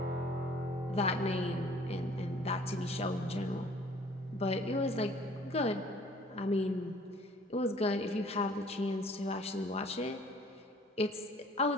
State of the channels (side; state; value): both; normal; correlation 0.54